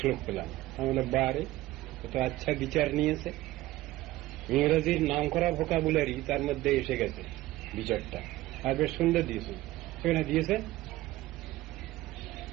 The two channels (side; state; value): left; quieter; 16.8 dB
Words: পেলাম, আমাদের বারে তো আচ্ছা বিচার নিয়েছে। ইংরেজির নাম করা ভোকাবুলারি তার মধ্যে এসে গেছে বিচারটা, আর বেশ সুন্দর দিয়েছে। সেখানে দিয়েছে